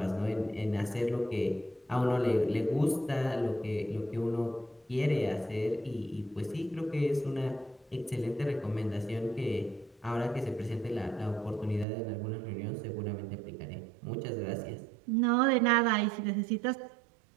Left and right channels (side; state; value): left; drops out; at 11.9 s